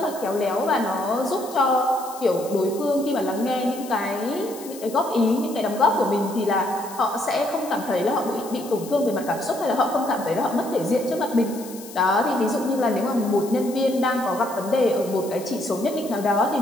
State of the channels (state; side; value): noise; left; hiss, 16 dB below the sound